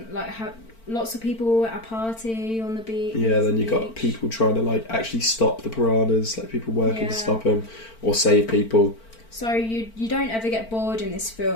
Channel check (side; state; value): right; late; 4.4 ms